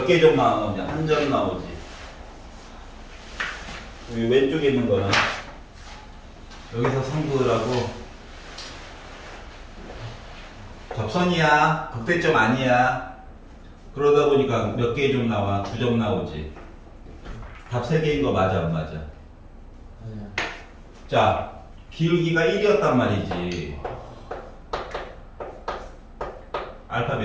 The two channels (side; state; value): both; identical; correlation 1.00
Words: 개 점 나오냐? 한 점 나오지. 여기 왼쪽에 있는 거는 여기서 선 그으라고 접선이야. 극대점 아니야. 그러다 보니까 몇 개의 점 나와? 두 점 나오지. 답 3개인 거 맞아 안 맞아? 자, 기울기가 1이었단 말이지. 알파